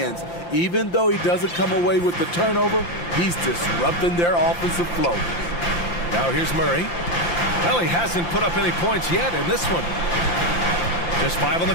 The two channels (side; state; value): right; late; 5.8 ms